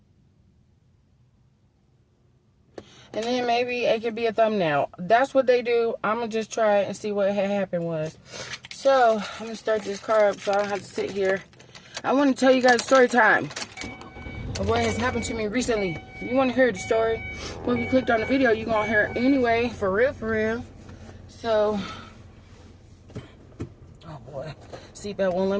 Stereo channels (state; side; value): identical; both; correlation 1.00